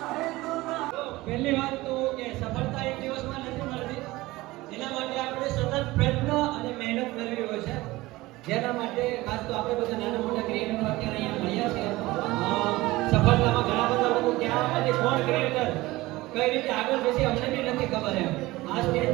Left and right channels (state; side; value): quieter; left; 19.4 dB